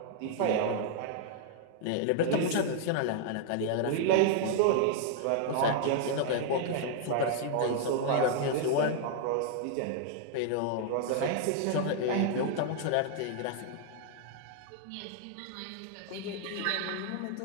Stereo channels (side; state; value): both; different; correlation -0.01